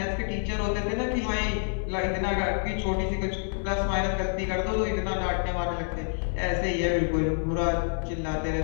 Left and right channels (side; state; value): right; silent; digital silence